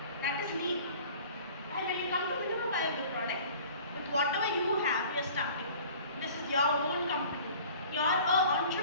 That is lean. And when you come to minimum viable product, with whatever you have, you are starting. This is your own company. You are an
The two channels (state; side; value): inverted; both; correlation -0.46